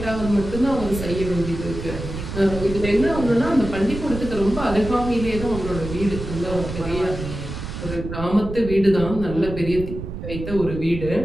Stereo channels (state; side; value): noise; right; rumble, 8 dB below the sound